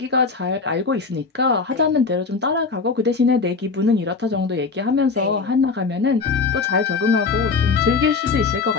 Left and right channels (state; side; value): quieter; right; 4.6 dB